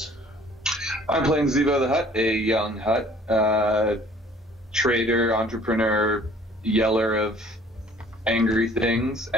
I'm playing Zivo the Hutt, a young Hutt, trader, entrepreneur, yeller of angry things,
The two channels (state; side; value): normal; both; correlation 0.54